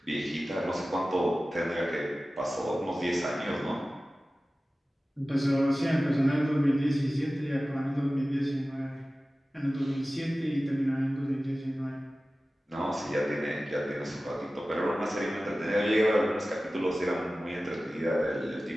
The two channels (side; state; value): both; normal; correlation 0.96